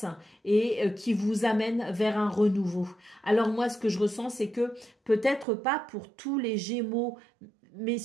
et qui vous amène vers un renouveau. Alors moi ce que je ressens c'est que peut-être pas pour tous les Gémeaux, mais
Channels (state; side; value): drops out; left; at 5.5 s